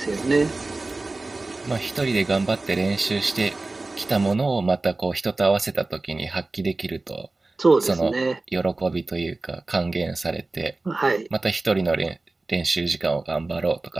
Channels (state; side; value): quieter; left; 3.2 dB